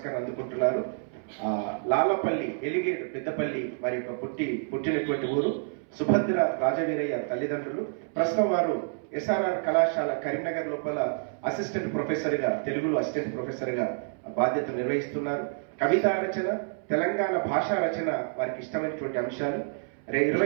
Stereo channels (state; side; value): silent; left; 59 dB below the other